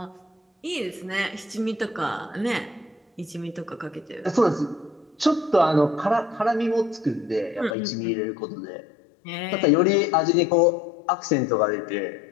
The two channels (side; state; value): right; drops out; at 7.8 s